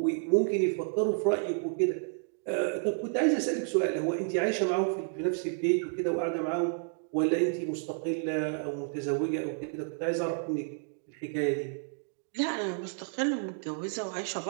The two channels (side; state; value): left; silent; 57 dB below the other